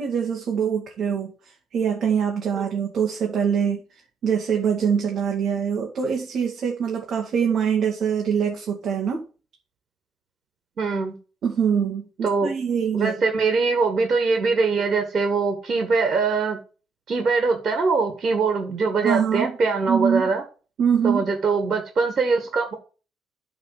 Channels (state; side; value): quieter; left; 5.3 dB